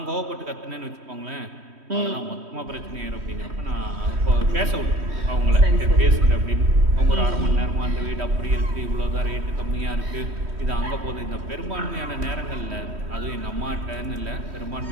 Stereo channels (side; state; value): left; late; 3.1 ms